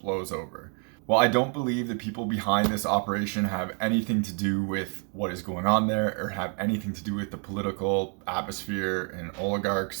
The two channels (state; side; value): quieter; left; 39.6 dB